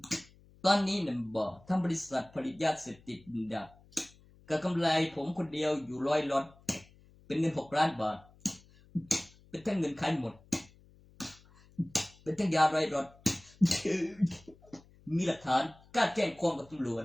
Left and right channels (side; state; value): left; noise; hum, 26 dB below the sound